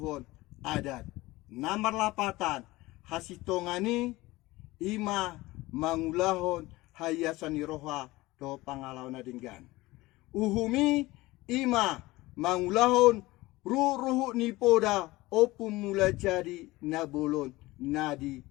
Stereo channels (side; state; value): right; quieter; 19.7 dB